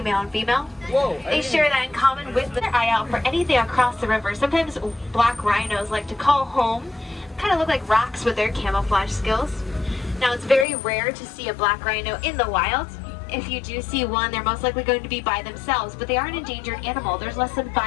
male and female. They share that in common with their eye out for anything across the river. Sometimes black rhinos like to call home, kind of look like rocks with their camouflage skills. Now, it's very rare to see a black rhino in the wild. If you do see one, they're most likely going to be by themselves, but they are an endangered animal. There's less than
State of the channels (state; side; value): drops out; right; at 10.7 s